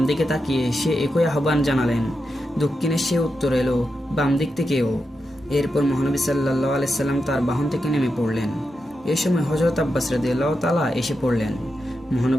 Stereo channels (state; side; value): normal; both; correlation 0.88